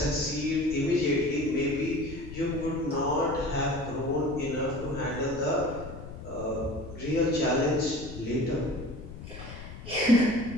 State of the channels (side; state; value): left; noise; rumble, 12 dB below the sound